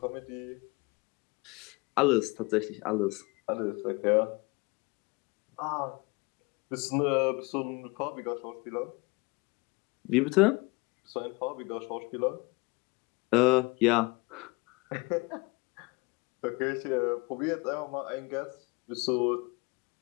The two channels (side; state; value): right; quieter; 26.3 dB